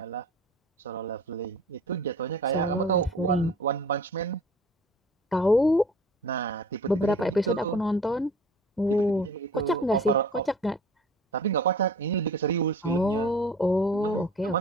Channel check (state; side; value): normal; both; correlation 0.46